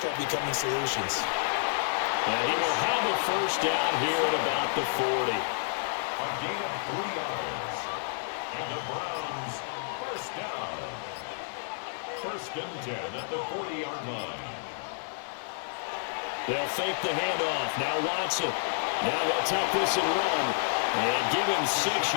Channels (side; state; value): right; silent; 56 dB below the other